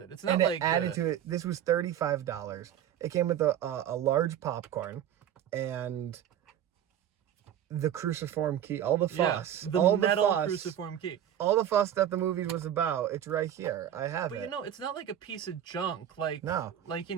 It's not and like... it added to it. This was $35. It came with a large popcorn and the cruciform key, all the fuss. The metal cruciform key. All the fuss that the movie was about, it's right here. I have it. But you know, it's not like a piece of junk. Like, no. Like, you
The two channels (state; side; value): quieter; left; 10.4 dB